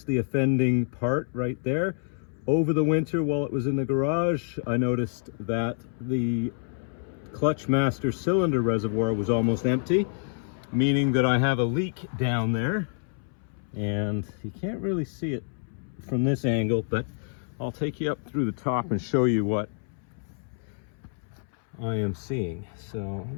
the offending part right there. Over the winter while it was in the garage, I noticed that the clutch master cylinder reservoir was almost empty, meaning that I have a leak down there. And you can't really see it from this angle, but I'll take you up through the top and show you what I am seeing. So let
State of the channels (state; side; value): silent; right; 60 dB below the other